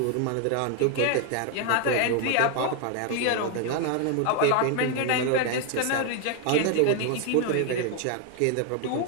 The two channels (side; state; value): both; different; correlation 0.00